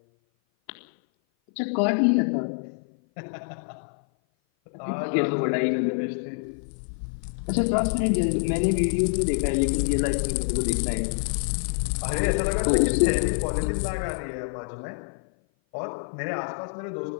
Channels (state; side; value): silent; right; 56 dB below the other